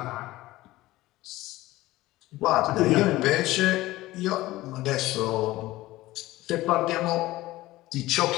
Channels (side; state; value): right; quieter; 17.6 dB